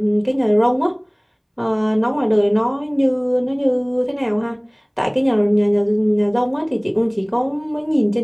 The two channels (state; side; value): identical; both; correlation 1.00